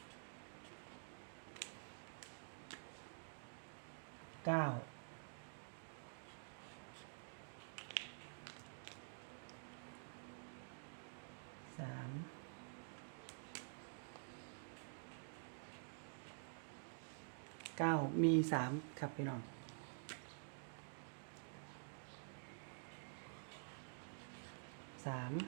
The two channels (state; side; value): silent; left; digital silence